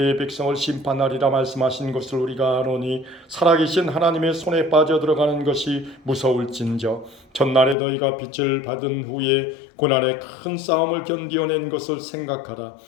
백성을 심판하리라 말씀하신 것을 우리가 아노니 살아계신 하나님의 손에 빠져들어가는 것이 무서울진저 전날에 너희가 빛을 받은 후에 고난의 큰 싸움을 견디어낸 것을 생각하라.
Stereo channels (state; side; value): drops out; right; at 7.8 s